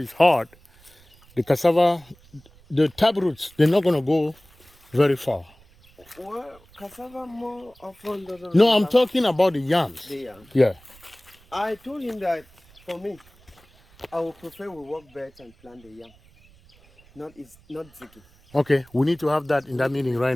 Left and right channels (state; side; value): noise; right; rumble, 28 dB below the sound